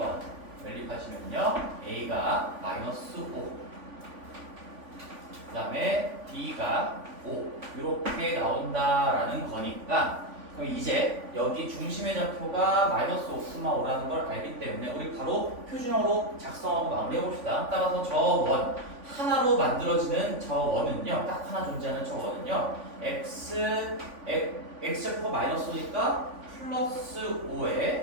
연립하시면요. A가 마이너스 5. 그 다음에 B가 5. 이렇게 나온다라는 거니까 그럼 이제 여기 중심의 좌표가 마이너스 5,5라는 걸 알기 때문에 우리 바로 표준형으로 작성하고 마무리해봅시다. 따라서 저 원 하나로 만들어지는 저 원은요. 딱 하나 존재하는 저 원은요. x제곱 마이너스 5니까 플러스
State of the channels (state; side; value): late; left; 3.5 ms